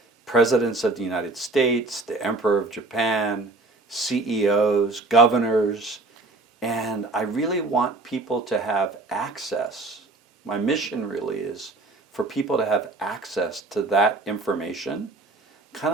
presidents of the United States, the Emperor of Japan, CEOs, governors, and I really want people to have access. My mission really is for people to have access to that information, kind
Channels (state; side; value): quieter; left; 3.2 dB